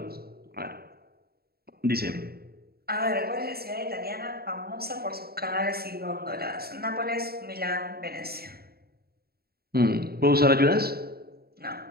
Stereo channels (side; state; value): left; late; 0.45 ms